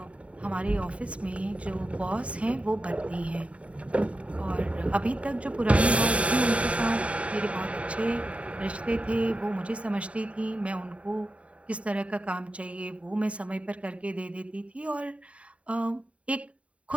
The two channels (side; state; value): left; late; 0.064 ms